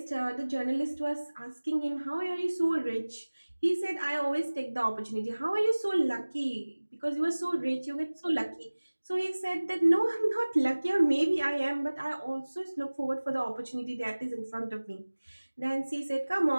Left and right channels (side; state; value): both; inverted; correlation -1.00